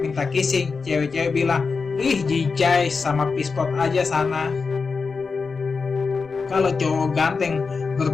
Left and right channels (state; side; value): quieter; right; 4.8 dB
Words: kissing, cewek-cewek bilang ih jijai sama pispot aja sana. Kalau cowok ganteng